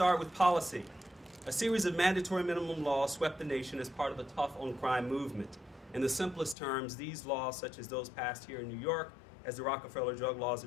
with policy. A series of mandatory minimum laws swept the nation as part of a tough on crime movement. In the simplest terms, these laws, such as those passed here in New York as the Rockefeller drug laws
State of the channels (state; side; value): drops out; right; at 6.6 s